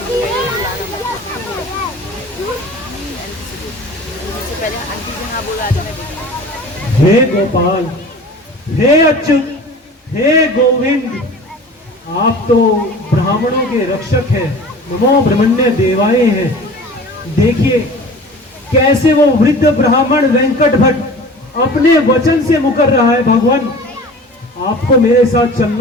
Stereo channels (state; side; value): normal; both; correlation 0.41